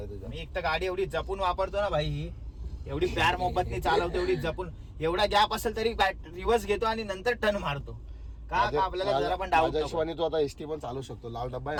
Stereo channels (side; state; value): both; identical; correlation 1.00